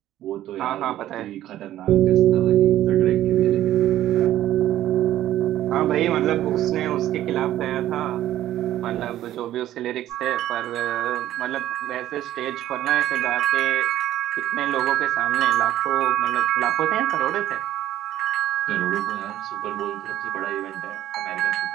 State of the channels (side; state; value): left; quieter; 13.2 dB